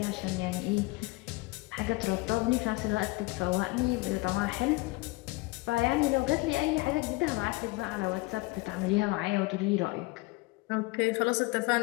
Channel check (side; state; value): right; quieter; 22.8 dB